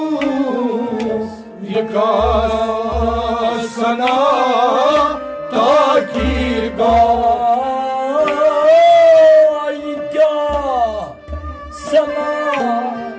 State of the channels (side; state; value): both; identical; correlation 1.00